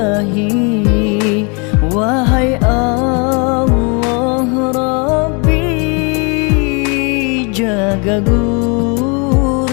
Wahai Allah Rabbi, jaga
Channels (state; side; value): quieter; right; 33.3 dB